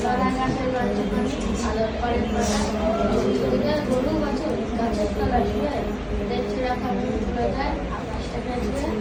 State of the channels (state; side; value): identical; both; correlation 1.00